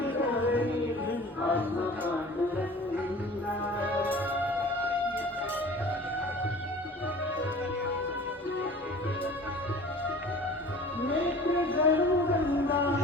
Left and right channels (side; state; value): both; normal; correlation 0.43